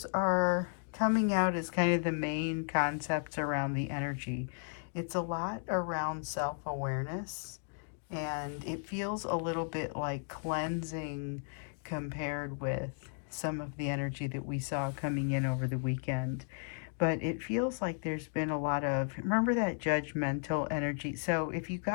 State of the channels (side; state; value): right; silent; 55 dB below the other